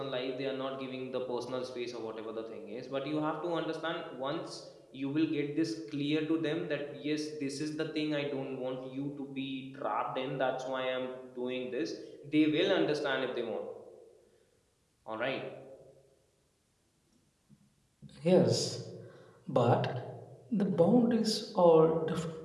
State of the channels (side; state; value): both; identical; correlation 1.00